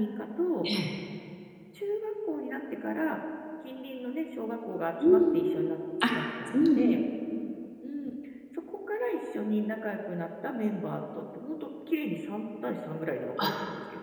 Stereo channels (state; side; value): identical; both; correlation 1.00